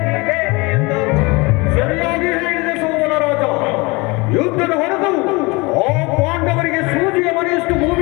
ಎಂದು ಸರಿಯಾಗಿ ಹೇಳಿದ ಸೋಮನ ರಾಜ. ಯುದ್ಧದ ಹೊರತು ಆ ಪಾಂಡವರಿಗೆ ಸೂಜಿಯ ಮನೆಯಷ್ಟು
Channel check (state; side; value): quieter; right; 25.4 dB